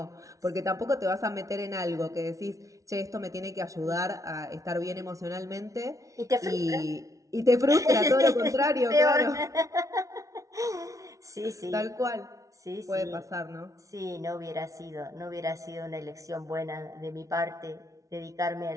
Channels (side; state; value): left; late; 0.16 ms